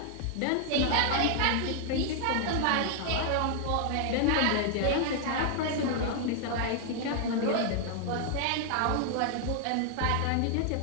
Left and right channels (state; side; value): different; both; correlation 0.00